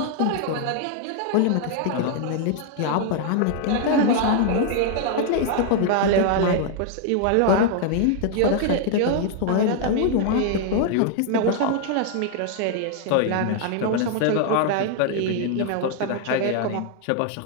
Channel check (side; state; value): both; different; correlation 0.00